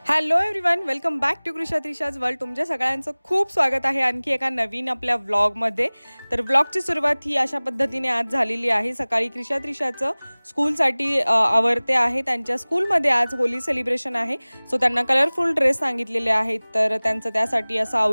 Hello everyone, welcome back to Krisha Trisha's world. तुमच्या सगळ्यांचं खूप स्वागत आहे आणखी एका नवीन आपल्या व्लॉगमध्ये. तर व्लॉगची सुरुवात ही अशा पद्धतीने आज झालेली आहे. सकाळी कृषा त्रिशाचं स्कूलसाठी आवरते आहे. त्यांच्या स्कूलमध्ये आज होली सेलिब्रेशन आहे, सो त्यांना कलरफुल ड्रेस सांगितलेले आहेत, तर त्यांचं त्यासाठी असं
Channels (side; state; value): both; inverted; correlation -1.00